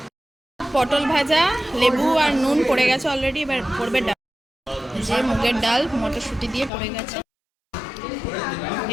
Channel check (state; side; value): drops out; right; at 6.7 s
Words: পটল ভাজা, লেবু আর নুন পড়ে গেছে অলরেডি, এবার পড়বে ডাল। যে মুগের ডাল মটরশুঁটি দিয়ে পড়ে গেছে।